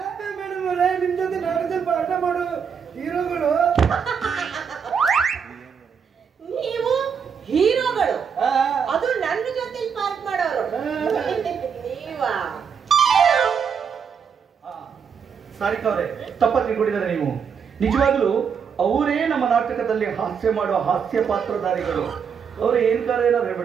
ನಿಮ್ ಜೊತೆ ನಾಟಕದಲ್ಲಿ ಪಾಠ ಮಾಡೋ ಹೀರೋಗಳು. ನೀವು ಹೀರೋಗಳು, ಅದು ನನ್ನ ಜೊತೆ ಪಾಠ ಮಾಡೋರು ನೀವಾ? ಸಾರಿಕಾ ಅವರೇ, ತಪ್ಪ ತಿಳ್ಕೊಂಡಿದ್ದಾರೆ ನೀವು. ನಿಜವಾಗ್ಲೂ ಅವರೇ ನಮ್ಮ ನಾಟಕದಲ್ಲಿ ಹಾಸ್ಯ ಮಾಡುವ ಹಾಸ್ಯ ಪಾತ್ರಧಾರಿಗಳು. ಅವ್ರು ಏನಾದ್ರು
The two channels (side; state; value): left; quieter; 6.8 dB